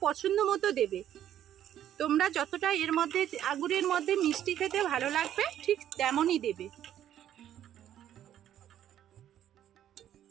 পছন্দ মতো দেবে। তোমরা যতটা এর মধ্যে আঙুরের মধ্যে মিষ্টি খেতে ভালো লাগবে ঠিক তেমনই দেবে।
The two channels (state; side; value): quieter; left; 11.0 dB